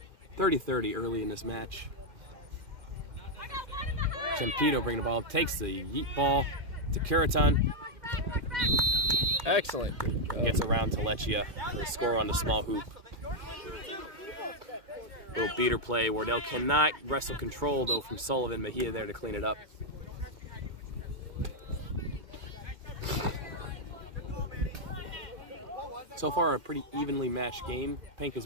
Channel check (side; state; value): left; late; 2.1 ms